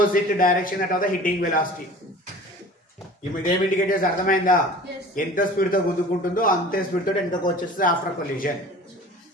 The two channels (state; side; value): normal; both; correlation 0.42